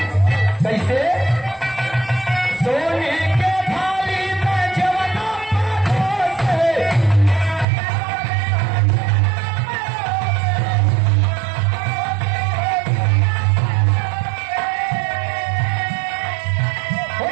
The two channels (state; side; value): drops out; left; at 7.7 s